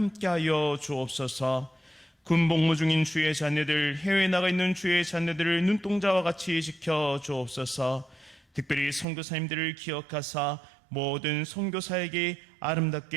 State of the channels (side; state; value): left; drops out; at 9.1 s